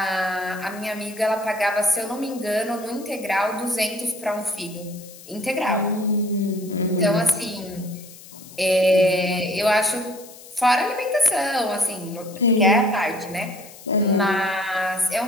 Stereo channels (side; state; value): left; noise; hiss, 19 dB below the sound